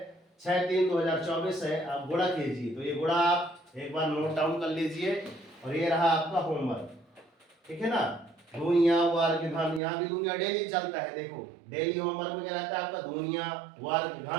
6/3/2024 है। आप गुणा कीजिए, तो ये गुणा आप एक बार नोट डाउन कर लीजिए। और ये रहा आपका होमवर्क, ठीक है ना। दुनिया वर्ग घन, यहाँ की दुनिया डेली चलता है। देखो डेली होमवर्क में क्या रहता है आपका, दुनिया वर्ग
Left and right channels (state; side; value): drops out; left; at 9.8 s